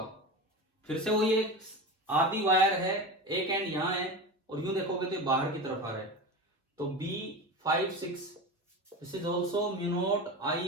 फिर से वही एक आधी वायर है, एक एंड यहां है और यूं देखोगे तो बाहर की तरफ आ रहा है, तो B56 this is also mu naught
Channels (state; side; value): normal; both; correlation 0.26